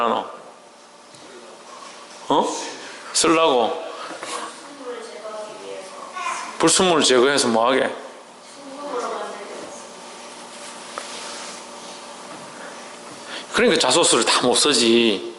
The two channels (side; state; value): both; identical; correlation 1.00